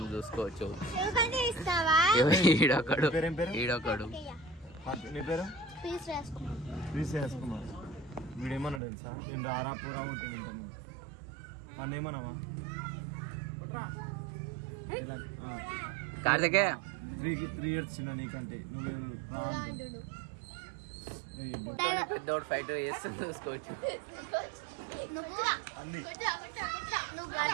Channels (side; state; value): left; drops out; at 8.8 s